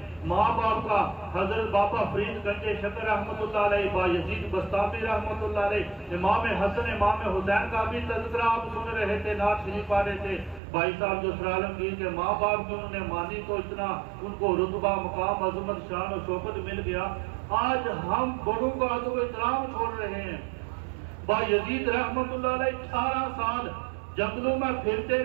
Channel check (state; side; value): drops out; left; at 10.6 s